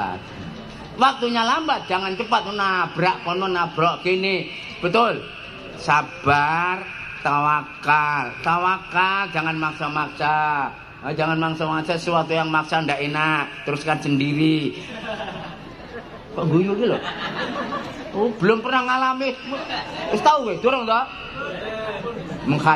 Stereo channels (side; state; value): both; identical; correlation 1.00